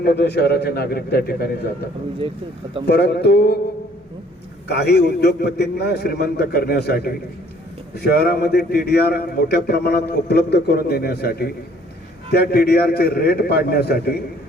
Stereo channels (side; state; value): both; normal; correlation 0.59